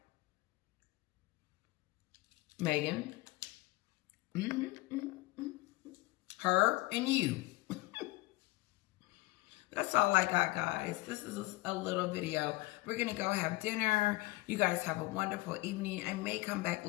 Meghan, her and you. That's all I got, guys. This is a little video. We're going to go have dinner. You guys have a wonderful evening. I may come back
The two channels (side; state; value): right; quieter; 21.3 dB